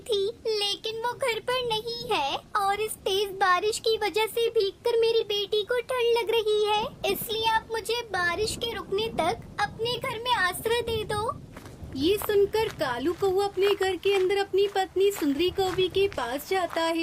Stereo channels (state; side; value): identical; both; correlation 1.00